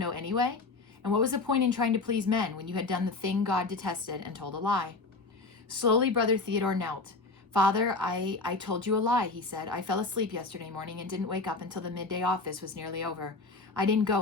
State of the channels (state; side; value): quieter; right; 3.7 dB